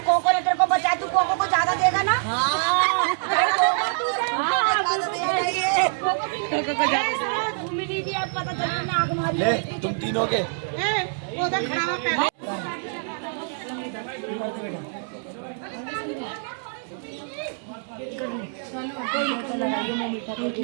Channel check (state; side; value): silent; left; 62 dB below the other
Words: कोको ने तेरे को बचा, तू कोको को ज्यादा देगा ना। ले, तुम तीनों के।